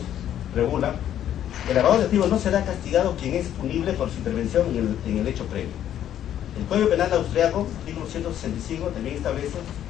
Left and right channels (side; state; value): right; quieter; 10.9 dB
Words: regula que el lavado de activos no será castigado quien es punible por su intervención en el hecho previo. El Código Penal austriaco, artículo 165, también establece